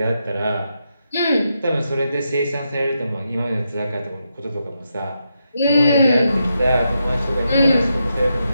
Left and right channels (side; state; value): both; inverted; correlation -0.84